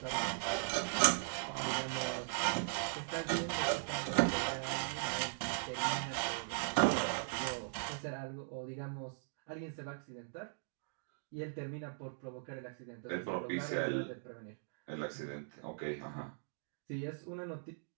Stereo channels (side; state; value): left; silent; digital silence